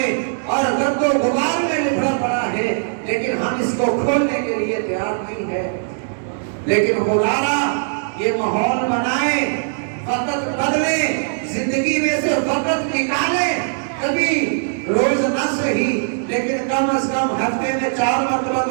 اور گرد و غبار میں لپڑا پڑا ہے، لیکن ہم اس کو کھولنے کے لیے تیار نہیں ہے۔ لیکن خدارا یہ ماحول بنائیں، وقت بدلیں، زندگی میں سے وقت نکالیں، کبھی روز نہ صحیح لیکن کم از کم ہفتے میں 4 مرتبہ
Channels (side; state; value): left; silent; digital silence